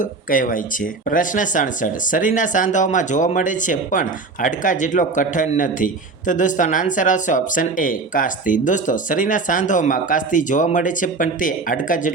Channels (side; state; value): left; quieter; 4.0 dB